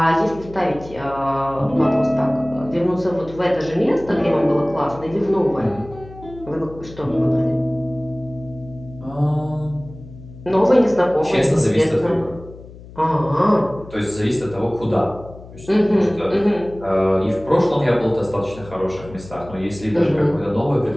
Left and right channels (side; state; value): left; noise; hum, 18 dB below the sound